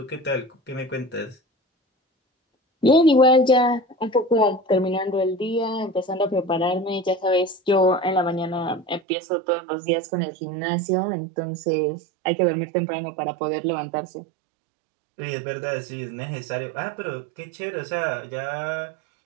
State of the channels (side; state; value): left; drops out; at 9.0 s